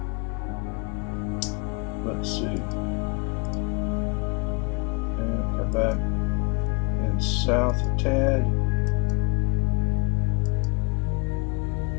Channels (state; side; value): quieter; right; 31.1 dB